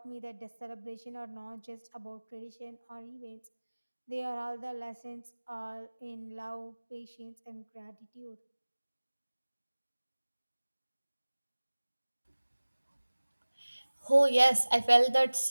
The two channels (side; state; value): both; inverted; correlation -1.00